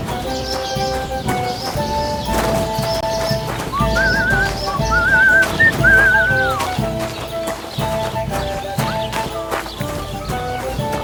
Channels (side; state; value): both; identical; correlation 1.00